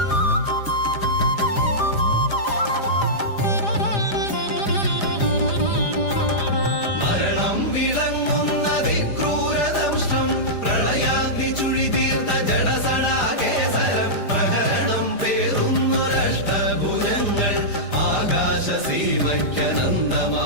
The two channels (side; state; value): right; late; 4.9 ms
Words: മരണം വിളങ്ങുന്ന ദിക്രൂരദംഷ്ടം പ്രളയാഗ്നി ചുഴിതീർത്ത ജഡസടാകേസരം പ്രഹരണം പേറുന്നൊരഷ്ടഭുജങ്ങൾ ആകാശസീമയ്ക്കനന്തമാം